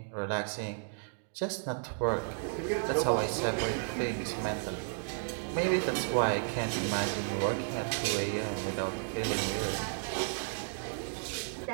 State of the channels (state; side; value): silent; left; digital silence